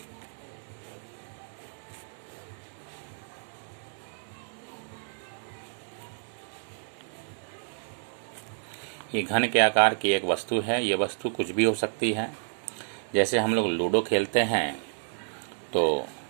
ये घन के आकार की एक वस्तु है। ये वस्तु कुछ भी हो सकती है। जैसे हम लोग लूडो खेलते हैं तो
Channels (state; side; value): silent; left; digital silence